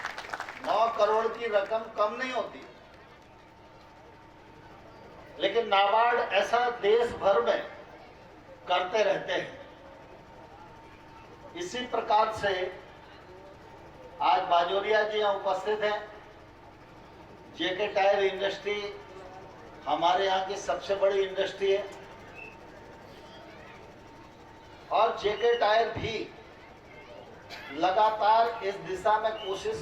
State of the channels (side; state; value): both; identical; correlation 1.00